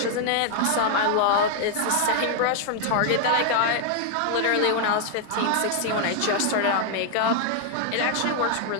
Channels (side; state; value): both; different; correlation 0.00